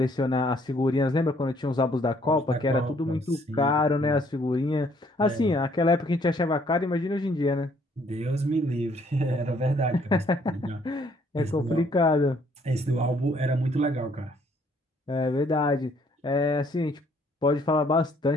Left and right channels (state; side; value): normal; both; correlation 0.64